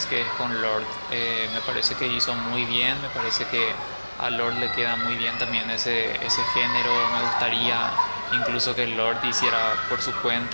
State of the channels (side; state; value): both; inverted; correlation -1.00